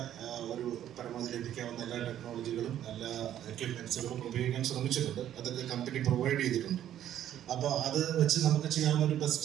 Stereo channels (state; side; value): quieter; left; 11.2 dB